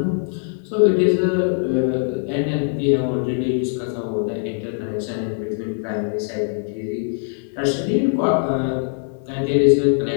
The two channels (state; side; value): silent; right; digital silence